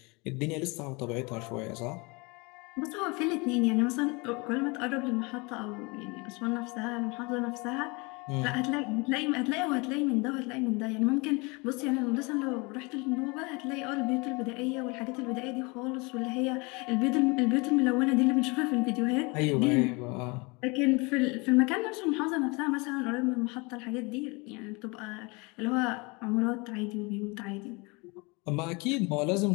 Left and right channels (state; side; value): quieter; right; 27.8 dB